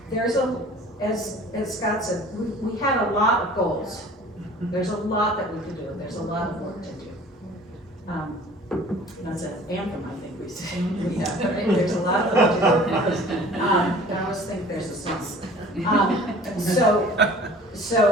There's as Scott said, we had a lot of goals. There's a lot that we could do. There's a lot of work to do. That's an anthem, I think we say. Yeah, there's a lot of work to do. I always think there's a sense.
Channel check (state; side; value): normal; both; correlation 0.47